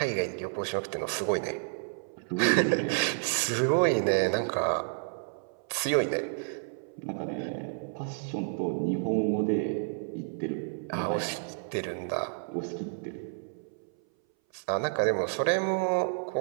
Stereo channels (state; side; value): silent; left; 58 dB below the other